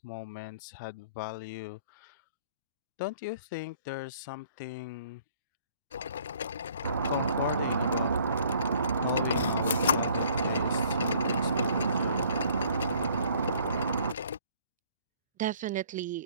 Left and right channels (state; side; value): inverted; both; correlation -0.58